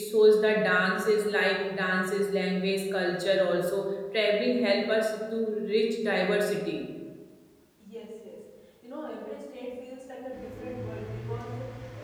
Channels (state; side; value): identical; both; correlation 1.00